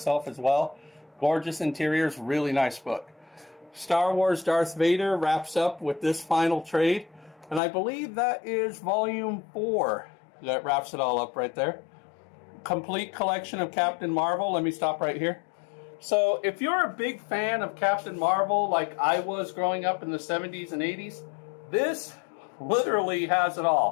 as well. Gorgeous interiors, really nice book. Star Wars Darth Vader wraps up with this final trade. And I believe that is volume 4 that wraps it all up right there. Complete collection of Captain Marvel. Let me stop right here. So if you're a big fan of Captain Marvel like I was growing up in the 70s and 80s, this literally has it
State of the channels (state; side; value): drops out; right; at 7.6 s